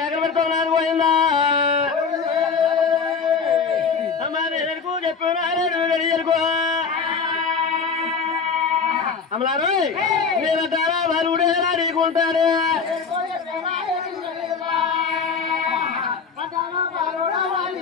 పెడతావు నాది పోయిందా అమ్మా నేను చెప్పు అమలారు నేను తారా బరువుడేలా నీకుంటాడు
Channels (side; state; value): right; quieter; 5.6 dB